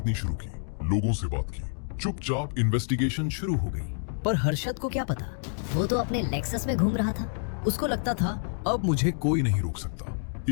शुरू की, लोगों से बात की, चुपचाप इन्वेस्टिगेशन शुरू हो गई। पर हर्षद को क्या पता, वो तो अपने लेक्सस में घूम रहा था। उसको लगता था अब मुझे कोई नहीं रोक सकता।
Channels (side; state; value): right; silent; digital silence